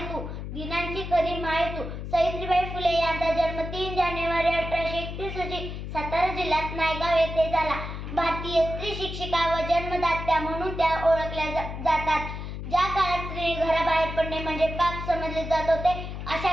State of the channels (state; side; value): noise; left; hum, 7 dB below the sound